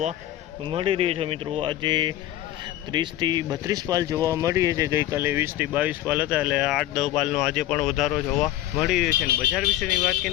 મળી રહ્યો છે મિત્રો। આજે 30 થી 32 પાલ જોવા મળી રહી છે। ગઈકાલે 20 થી 22 પાલ હતા, એટલે 8-10 પાલનો આજે પણ વધારો જોવા મળી રહ્યો છે। અને બજાર વિશેની વાત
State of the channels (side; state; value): right; quieter; 13.9 dB